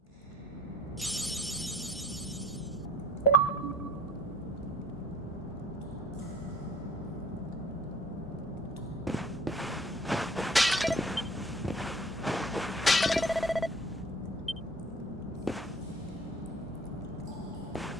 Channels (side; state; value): both; normal; correlation 0.52